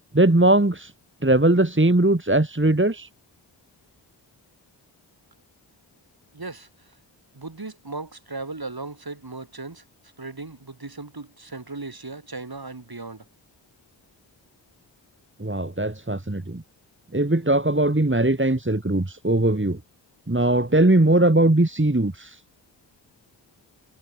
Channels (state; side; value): normal; both; correlation 0.37